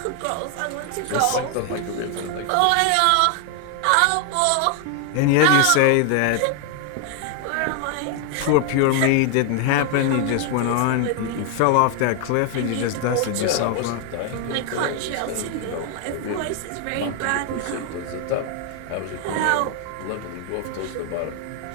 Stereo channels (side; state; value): both; different; correlation 0.00